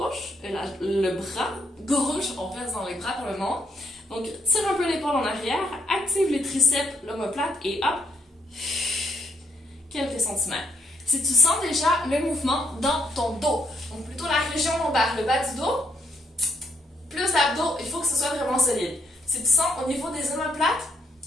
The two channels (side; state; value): both; normal; correlation 0.74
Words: le bras gauche, on reste dans les bras pour le moment. Donc, tire un peu l'épaule en arrière, active les triceps, l'omoplate et hop, quelques centimètres. Si tu sens déjà le mouvement dans ton dos, donc plutôt la région lombaire, le bas du dos, plus d'abdos, il faut que ce soit vraiment solide. Si tu sens au niveau des omoplates,